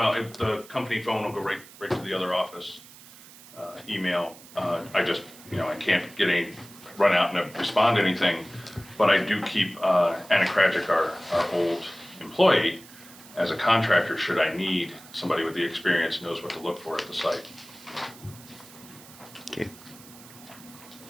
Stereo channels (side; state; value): right; noise; hiss, 20 dB below the sound